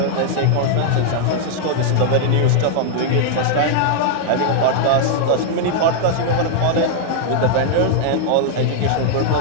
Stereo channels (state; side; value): different; both; correlation -0.01